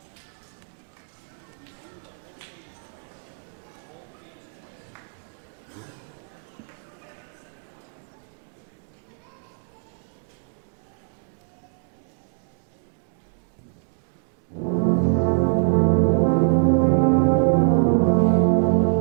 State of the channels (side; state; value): left; silent; digital silence